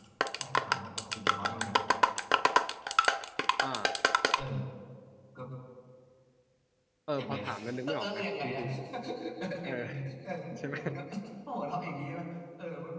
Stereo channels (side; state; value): both; identical; correlation 1.00